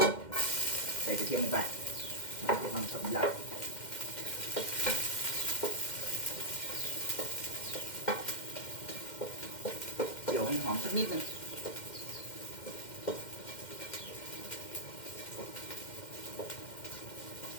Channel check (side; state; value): right; late; 2.1 ms